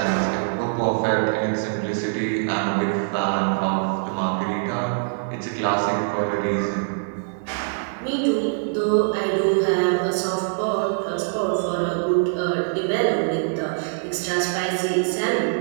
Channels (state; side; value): silent; left; 58 dB below the other